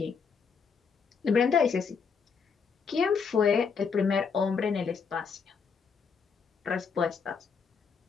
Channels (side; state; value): right; quieter; 5.8 dB